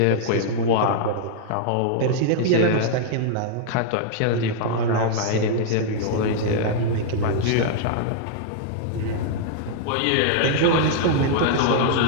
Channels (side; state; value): both; different; correlation -0.01